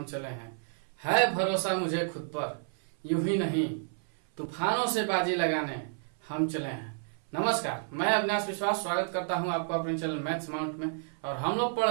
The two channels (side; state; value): left; silent; 57 dB below the other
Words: चले हैं। है भरोसा मुझे खुद पर, यूं ही नहीं तूफानों से बाजी लगाने हम चले हैं। नमस्कार, मैं अविनाश विश्वास स्वागत करता हूं आपको अपने चैनल मैथ्स माउंट में। और हम लोग पढ़